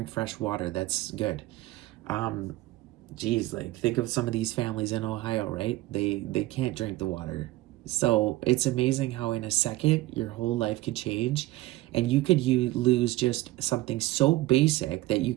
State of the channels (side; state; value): left; quieter; 17.8 dB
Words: fresh water. That's good. Geez, like, think of some of these families in Ohio, right? They can't drink the water. So it's amazing how in a second your whole life could change, and you could lose just something so basic that you